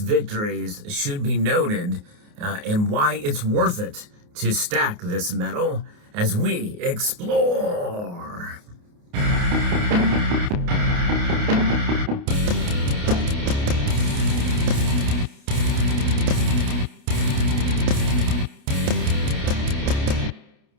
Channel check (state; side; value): late; left; 28 ms